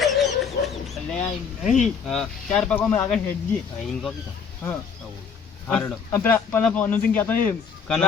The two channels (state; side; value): quieter; right; 6.2 dB